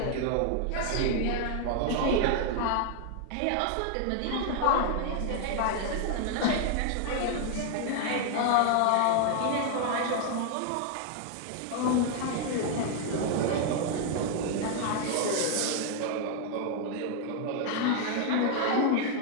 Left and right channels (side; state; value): both; different; correlation 0.00